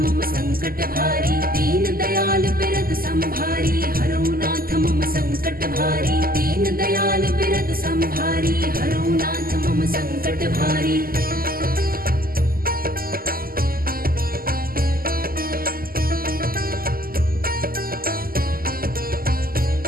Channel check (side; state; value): left; late; 0.42 ms